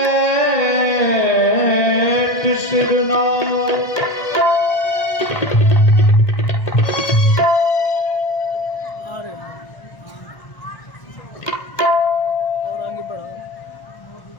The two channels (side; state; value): right; late; 1.8 ms